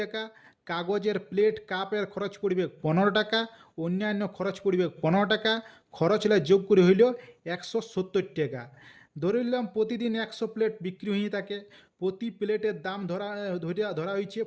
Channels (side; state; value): both; identical; correlation 1.00